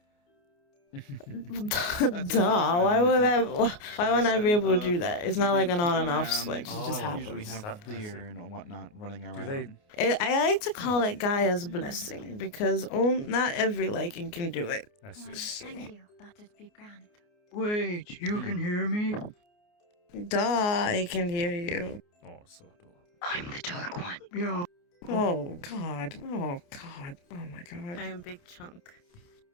Duh. Why wouldn't I be able to do that? It's not like an on and off switch. It just Usually happens. have deer and whatnot running around. I like to call it Gaia's blessing because not every liking can do it. I see. Thank you. That would be grand. Wait, you can hear me? Duh, I can hear you. Oh, so adorable. I'm the dark one. Yeah. Oh god. Oh god. Oh my god. I am Big Chunk.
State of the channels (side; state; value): right; late; 29 ms